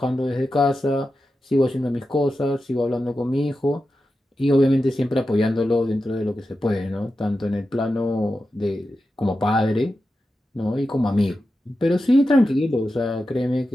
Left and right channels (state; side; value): normal; both; correlation 0.91